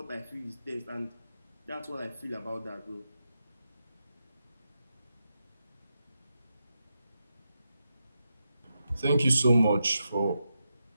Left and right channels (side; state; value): both; inverted; correlation -0.87